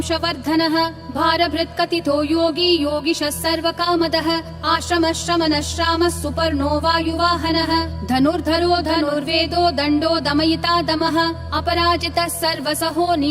भारभृत्कथितो योगी योगिशः सर्वकामदः आश्रमः श्रमणः श्रामः सुपर्णो वायुवाहनः धनुर्धरो धनुर्वेदो दण्डो दमयिता दमः अपराजितः सर्वसहो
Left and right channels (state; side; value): identical; both; correlation 1.00